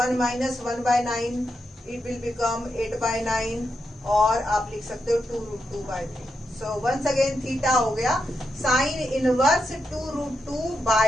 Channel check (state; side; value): normal; both; correlation 0.85